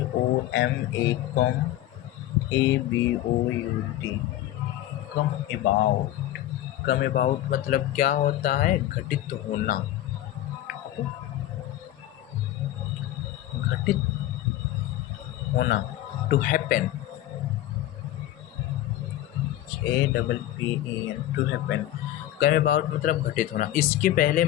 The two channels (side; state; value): right; quieter; 14.0 dB